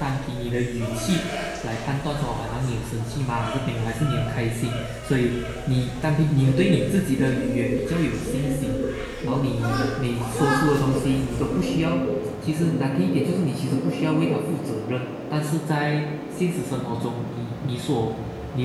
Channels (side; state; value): both; identical; correlation 1.00